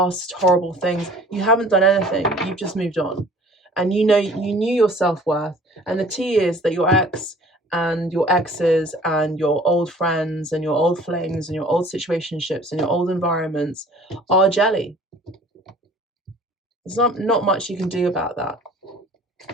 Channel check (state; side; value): normal; both; correlation 0.50